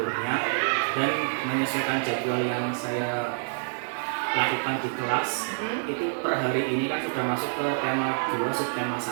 dan menyesuaikan jadwal yang saya lakukan di kelas. Itu per hari ini kan sudah masuk ke tema 2, subtema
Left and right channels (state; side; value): silent; left; digital silence